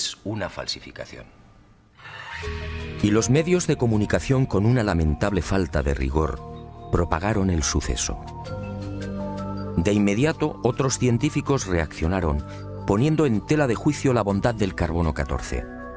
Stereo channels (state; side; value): identical; both; correlation 1.00